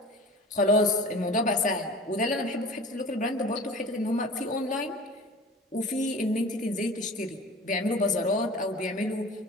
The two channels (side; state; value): both; normal; correlation 0.40